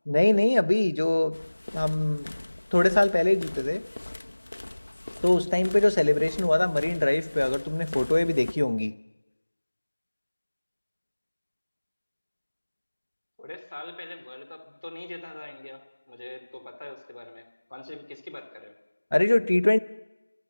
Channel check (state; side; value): inverted; both; correlation -1.00